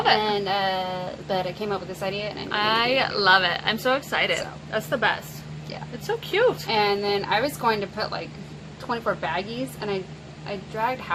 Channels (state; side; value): identical; both; correlation 1.00